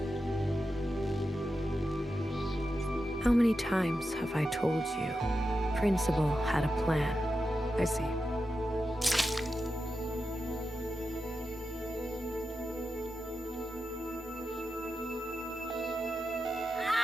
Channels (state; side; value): normal; both; correlation 0.90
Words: How many times have I told you? Principal had a plan. I see.